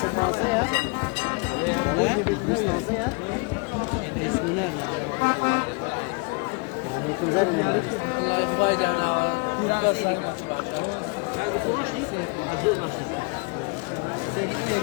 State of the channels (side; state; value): right; quieter; 30.8 dB